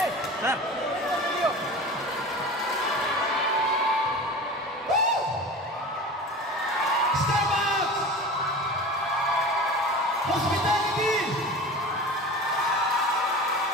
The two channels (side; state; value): both; normal; correlation 0.34